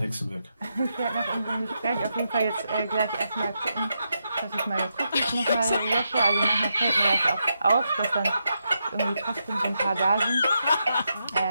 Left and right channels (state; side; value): inverted; both; correlation -0.84